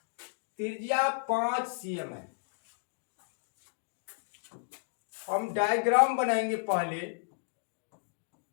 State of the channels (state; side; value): silent; right; digital silence